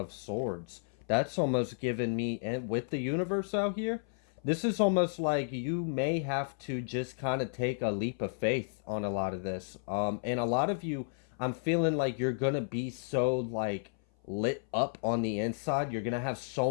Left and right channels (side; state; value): right; silent; 56 dB below the other